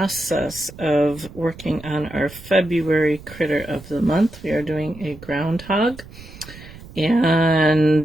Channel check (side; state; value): right; noise; rumble, 17 dB below the sound